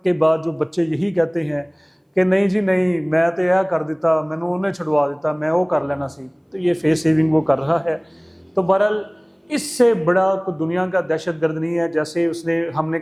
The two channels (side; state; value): both; identical; correlation 1.00